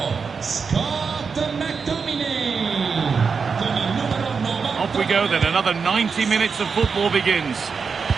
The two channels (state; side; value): quieter; left; 5.5 dB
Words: Off we go then, another 90 minutes of football begins.